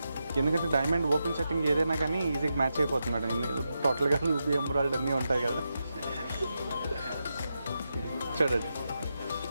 ఎందుకంటే డైమండ్ ఓపెన్ సెట్టింగ్ ఏదైనా కానీ ఈజీగా మ్యాచ్ అయిపోతుంది మేడం. టోటల్గా రూబీ ఎమరాల్డ్ అన్నీ ఉంటాయి కదా. చూడండి.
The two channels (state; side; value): inverted; both; correlation -0.87